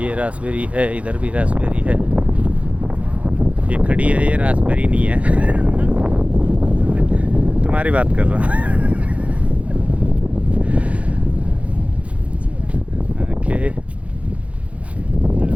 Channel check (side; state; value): left; late; 0.064 ms